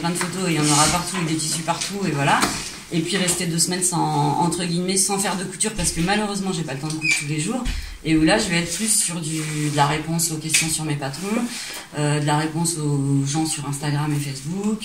de photos et il y en aura partout et des tissus partout et voilà. Et puis rester 2 semaines entre guillemets sans faire de couture parce que malheureusement j'ai pas le temps de coudre tous les jours. Et où là je vais être plus sur de la réponse aux questions sur mes patrons, de la réponse aux gens sur Instagram et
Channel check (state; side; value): identical; both; correlation 1.00